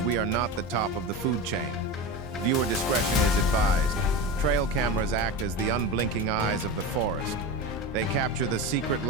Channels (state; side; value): normal; both; correlation 0.24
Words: we are not the top of the food chain. Viewer discretion is advised. Trail cameras act as the unblinking eyes of the forest. They capture the secret